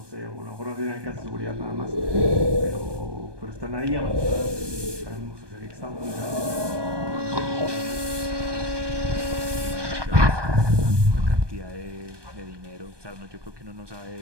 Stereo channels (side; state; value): left; late; 1.2 ms